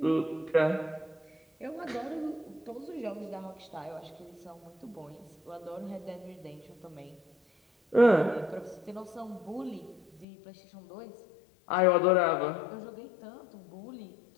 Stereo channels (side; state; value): right; drops out; at 10.2 s